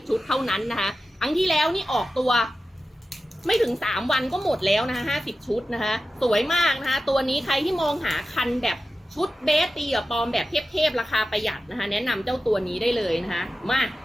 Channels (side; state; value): both; normal; correlation 0.93